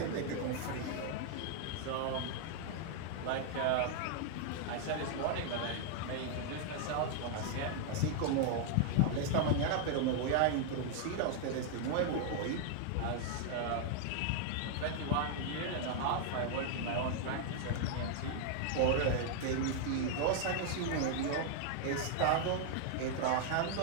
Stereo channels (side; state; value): both; different; correlation 0.00